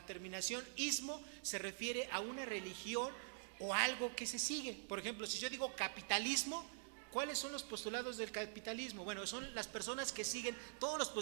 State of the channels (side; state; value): left; silent; digital silence